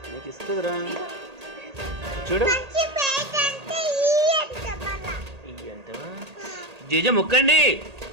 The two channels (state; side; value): late; left; 1.8 ms